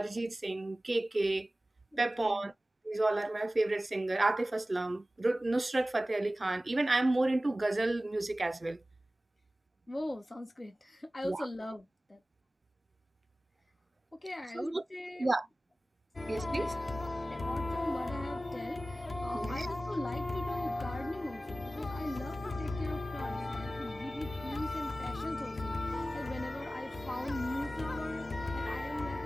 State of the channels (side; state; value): both; normal; correlation 0.96